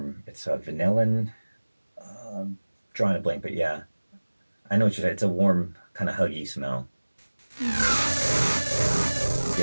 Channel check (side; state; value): both; inverted; correlation -1.00